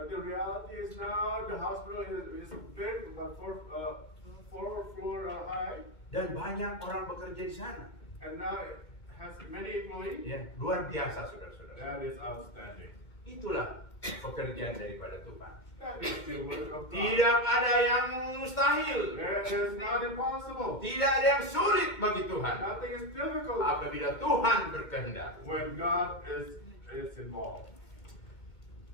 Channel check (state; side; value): late; right; 2.2 ms